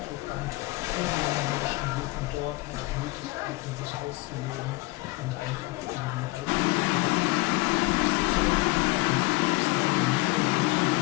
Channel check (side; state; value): right; quieter; 22.2 dB